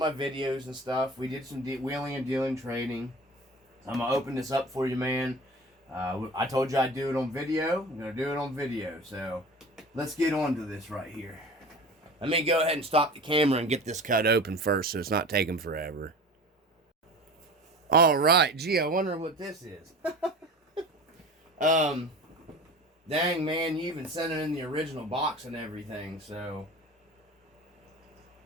videos and stuff. We did some wheeling and dealing trading. I'm going to open this up for you, man. I told you I'd do it on video. I'm going to do it on video. So, let's get on to this right here. Let me go ahead and stop the camera and get this cut open first so it's not taking forever. All right. Gee, I wonder what this is. Dang, man, you even sent it in the original box and everything, so...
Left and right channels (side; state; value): both; normal; correlation 0.37